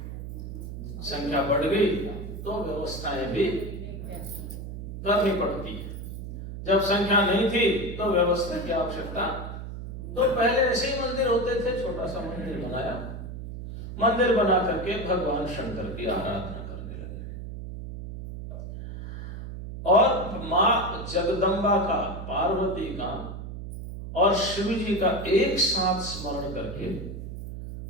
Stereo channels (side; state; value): right; noise; hum, 8 dB below the sound